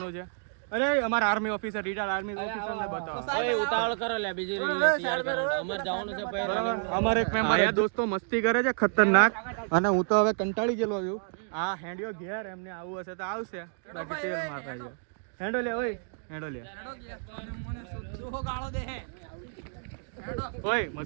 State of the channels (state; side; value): silent; left; digital silence